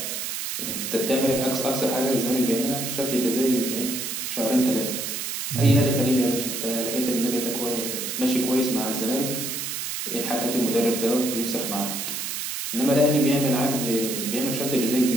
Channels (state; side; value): noise; right; hiss, 4 dB below the sound